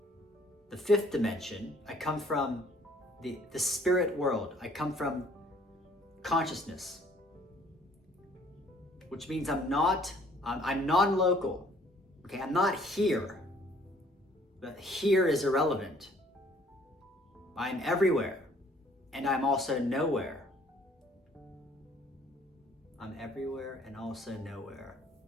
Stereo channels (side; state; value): both; normal; correlation 0.59